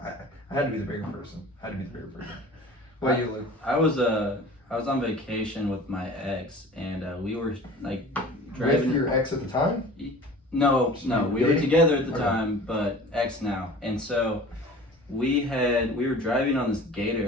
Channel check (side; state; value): both; normal; correlation 0.42